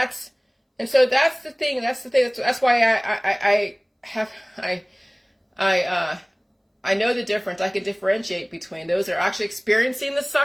so that's the thing. That's why I know the difference. I can differentiate between those that are actually experiencing the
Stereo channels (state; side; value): identical; both; correlation 1.00